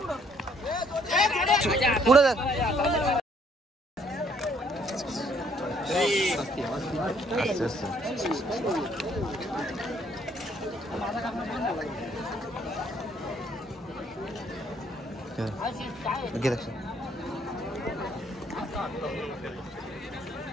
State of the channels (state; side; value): normal; both; correlation 0.65